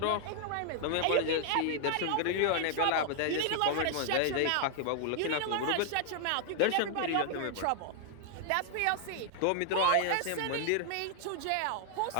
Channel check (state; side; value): different; both; correlation 0.00